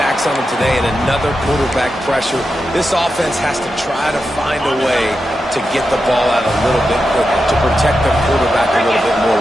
on them today and another quarterback pressure. This offense has to try to find a way to get the ball out a little bit quicker, to protect the quarterback a little bit more.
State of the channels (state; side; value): normal; both; correlation 0.89